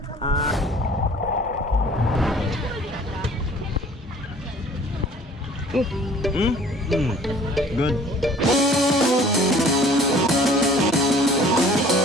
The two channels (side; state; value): both; normal; correlation 0.52